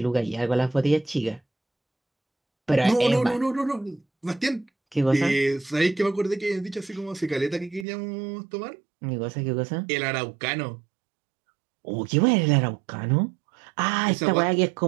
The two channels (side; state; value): left; drops out; at 7.9 s